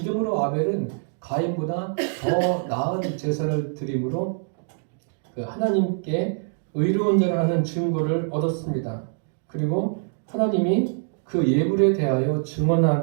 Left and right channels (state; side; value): silent; left; 62 dB below the other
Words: 아벨은 가인보다 더 나은 제사를 드림으로 하나님께 의로운 자를 하는 증거를 얻었습니다. 그리고 하나님이 그 예물에 대하여